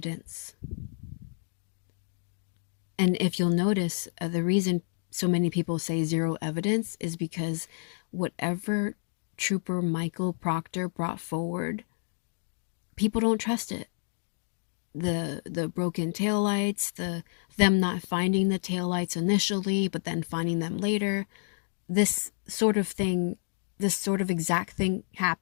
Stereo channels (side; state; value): right; silent; digital silence